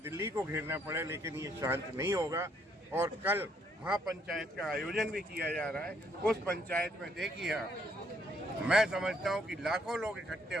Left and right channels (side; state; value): both; normal; correlation 0.69